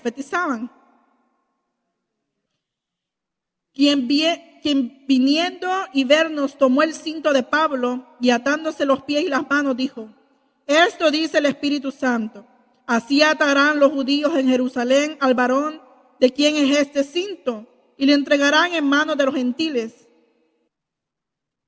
Quien viniendo y vernos tomó el cinto de Pablo y atándose los pies y las manos dijo, esto dice el Espíritu Santo, así atarán los judíos en Jerusalén al varón de quien es este cinto y le entregarán en manos de los gentiles.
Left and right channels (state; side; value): identical; both; correlation 1.00